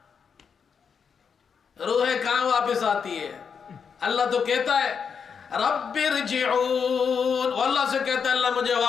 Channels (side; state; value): right; quieter; 6.5 dB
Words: روحیں کہاں واپس آتی ہے؟ اللہ تو کہتا ہے رب ارجعون, اللہ سے کہتا ہے اللہ مجھے